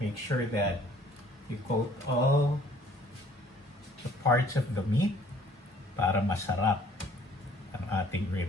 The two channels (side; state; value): both; normal; correlation 0.57